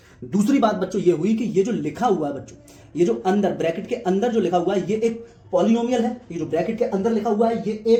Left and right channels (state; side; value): identical; both; correlation 1.00